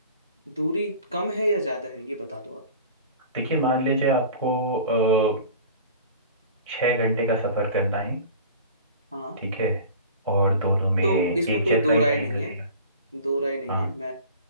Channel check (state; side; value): inverted; both; correlation -0.42